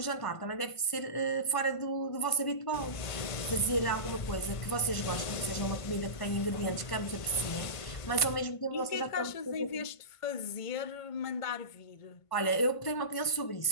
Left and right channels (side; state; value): right; late; 1.5 ms